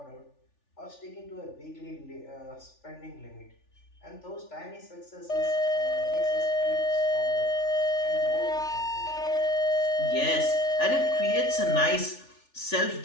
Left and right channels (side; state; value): right; late; 3.4 ms